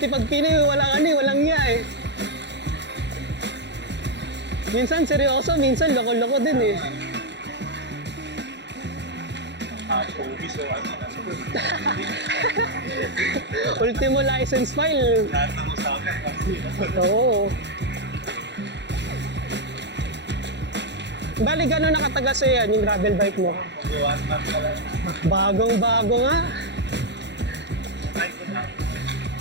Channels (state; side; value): late; left; 0.51 ms